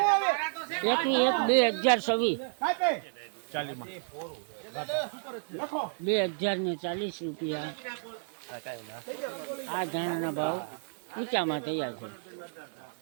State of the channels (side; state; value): left; silent; digital silence